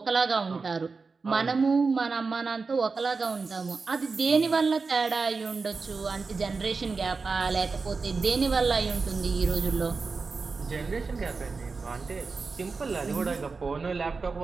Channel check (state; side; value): quieter; left; 4.4 dB